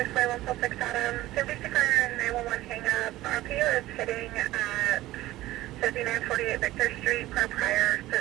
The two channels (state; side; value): quieter; left; 16.5 dB